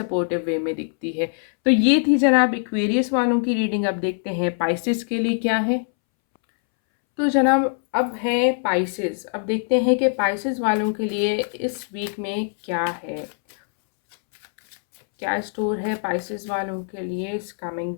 वे में दिखती है। तो ये थी जनाब एक्वेरियस वालों की रीडिंग। अब देखते हैं पाइसेस के लिए क्या है। तो जनाब अब है पाइसेस। अब देखते हैं कि पाइसेस वालों के लिए इस वीक में क्या है, क्या स्टोर है पाइसेस वालों के लिए इस कमिंग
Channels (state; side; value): silent; right; 64 dB below the other